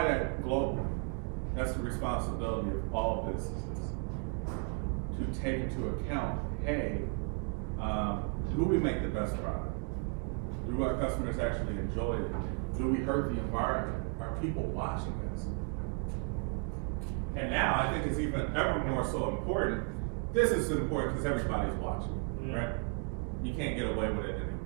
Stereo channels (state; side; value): quieter; left; 37.3 dB